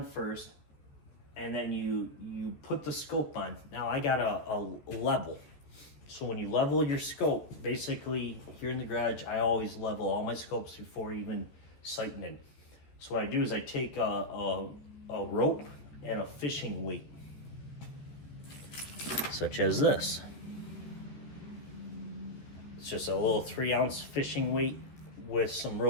first, and then you put the scope on. Now I got a level. So when you level your scope, basically here in the garage, I always level all my scopes before even sighting in. So what I do is I take a rope and a fishing weight, such as this. It's just a little 3-ounce fishing weight with some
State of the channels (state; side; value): late; right; 14 ms